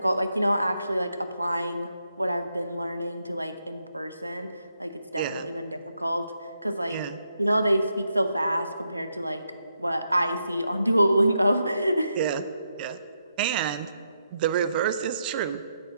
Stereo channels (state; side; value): inverted; both; correlation -0.81